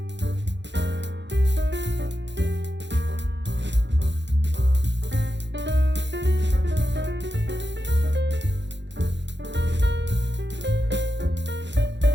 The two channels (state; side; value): late; left; 0.52 ms